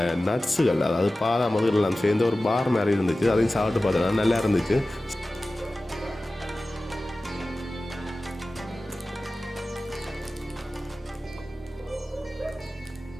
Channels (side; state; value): both; normal; correlation 0.96